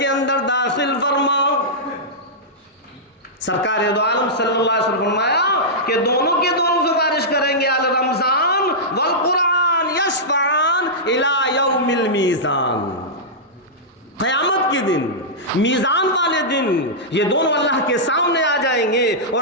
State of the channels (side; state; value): both; normal; correlation -0.12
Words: अंदर दाखिल फरमाओ। सरकार दो आलम सल्लल्लाहु अलैहि वसल्लम फरमाया कि दोनों के दोनों सिफारिश करेंगे, अल रमजान वल कुरान यशफान इला यौमिल मीज़ान। क़यामत के दिन, मीज़ान वाले दिन, ये दोनों अल्लाह के सामने आ जाएंगे